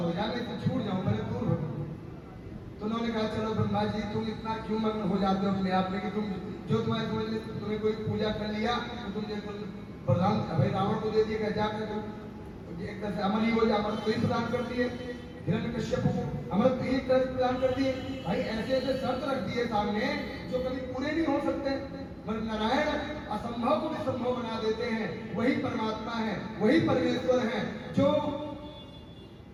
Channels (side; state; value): both; identical; correlation 1.00